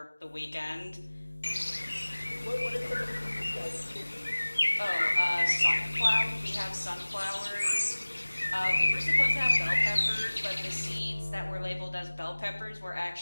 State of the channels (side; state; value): both; inverted; correlation -1.00